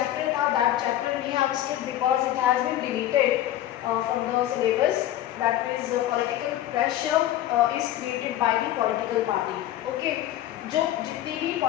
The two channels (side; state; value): right; quieter; 13.2 dB